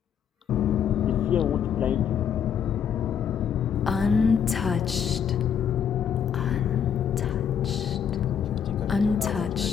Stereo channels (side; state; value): right; quieter; 8.0 dB